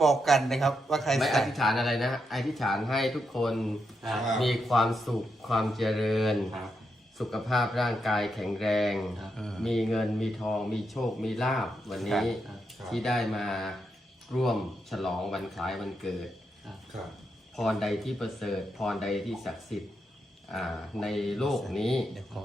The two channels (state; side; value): normal; both; correlation 0.83